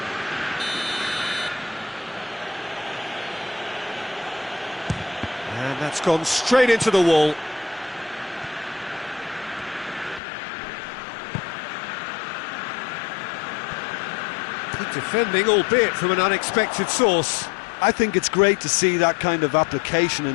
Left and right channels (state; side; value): drops out; right; at 10.2 s